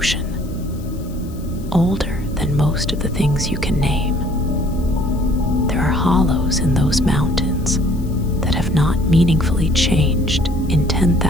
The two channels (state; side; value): noise; left; hiss, 24 dB below the sound